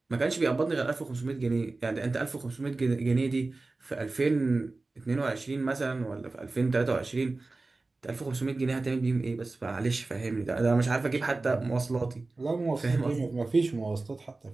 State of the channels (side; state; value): left; quieter; 3.4 dB